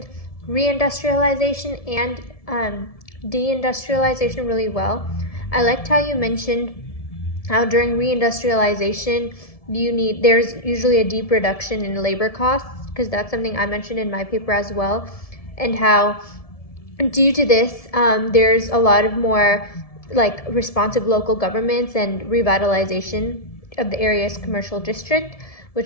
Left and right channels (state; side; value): late; right; 1.7 ms